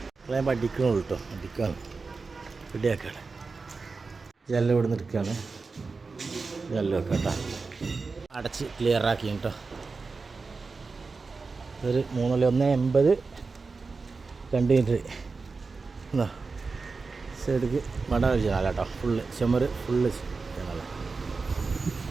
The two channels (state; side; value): quieter; left; 4.3 dB